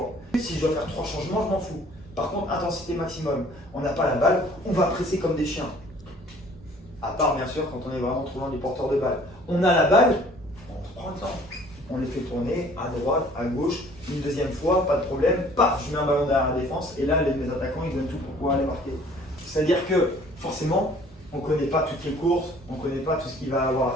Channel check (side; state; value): both; normal; correlation 0.54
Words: Si je dois faire 3 changements, je m'en fous. Par contre, intensité maximum. On n'a pas la balle, on va presser comme des chiens. À part, bien sûr, quand on est vraiment trop loin du porteur de balle. On a la balle, on prend le temps. On les fait tourner à droite, à gauche, une deuxième fois, pas de problème. Paf, je mets un ballon derrière la défense et là, mes attaquants, ils donnent tout pour pouvoir aller marquer. C'est-à-dire que, forcément, on ne connaît pas toutes les courses, on ne connaît pas tout ce qu'il va avoir